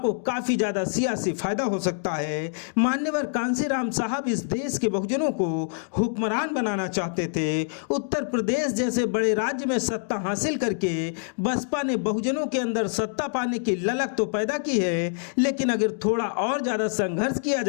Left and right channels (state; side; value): silent; right; digital silence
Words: काफी ज्यादा सियासी फायदा हो सकता है। मान्यवर कांशीराम साहब इस देश के बहुजनों को हुक्मरान बनाना चाहते थे। उत्तर प्रदेश जैसे बड़े राज्य में सत्ता हासिल करके बसपा ने बहुजनों के अंदर सत्ता पाने की ललक तो पैदा की है, लेकिन अगर थोड़ा और ज्यादा संघर्ष किया